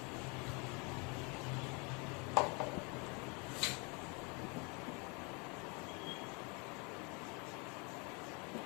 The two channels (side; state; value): right; quieter; 31.3 dB